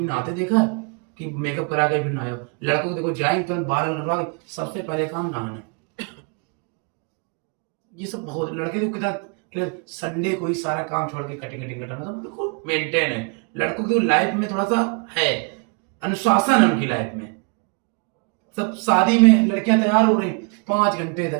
नहाते देखा कि मेकअप करा के फिर नहाए हो, लड़कों को देखो जाएंगे तुरंत बाहर कटवा के, सबसे पहले काम नहाना, ये सब बहुत, लड़के को कितना संडे को ही सारा काम छोड़ के कटिंग कटाना, सब देखो मेंटेन है, लड़कों की लाइफ में थोड़ा सा है अनुशासन है उनकी लाइफ में। सब शादी में लड़कियां तैयार हो रही 5 घंटे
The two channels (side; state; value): left; quieter; 36.7 dB